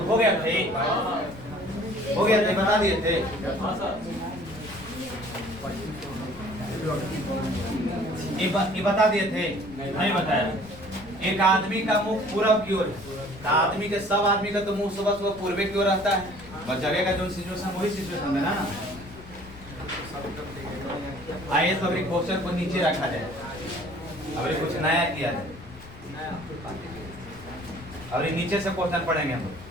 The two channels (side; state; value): left; noise; rumble, 18 dB below the sound